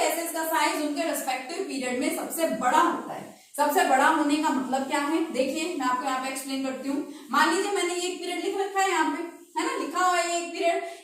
का साइज उनके रेस्पेक्टिव पीरियड में सबसे बड़ा होता है। सबसे बड़ा होने का मतलब क्या है, देखिए मैं आपको यहाँ पे एक्सप्लेन करती हूँ। मान लीजिए मैंने ये एक पीरियड लिख रखा है, यहाँ पे है ना, लिखा हुआ है एक पीरियड,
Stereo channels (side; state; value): both; identical; correlation 1.00